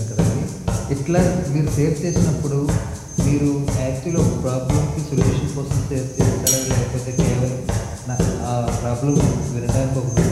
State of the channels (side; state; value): both; identical; correlation 1.00